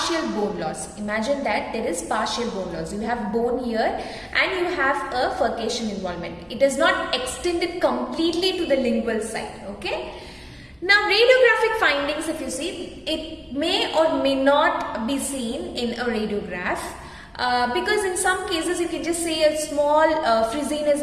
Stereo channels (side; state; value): both; identical; correlation 1.00